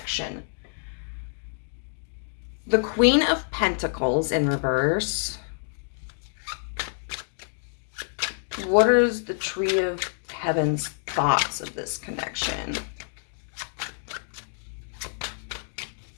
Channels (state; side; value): silent; right; digital silence